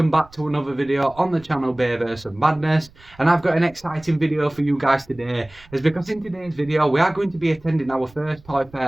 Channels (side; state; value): right; noise; rumble, 26 dB below the sound